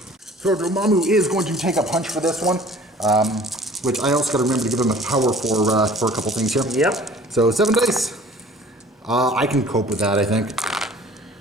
Dormammu is going to take a punch for this one. Which I also got to remember to give him a power for a couple things here. Yep. So 7 dice. I can cope with that, I think.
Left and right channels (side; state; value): both; normal; correlation 0.49